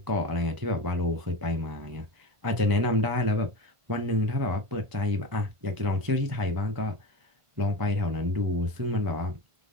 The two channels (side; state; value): left; late; 1.5 ms